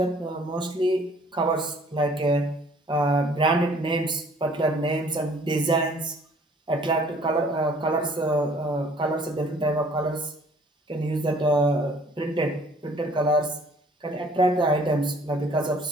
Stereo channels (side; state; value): both; normal; correlation 0.56